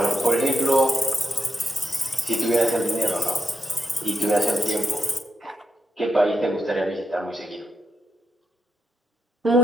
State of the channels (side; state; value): both; normal; correlation 0.85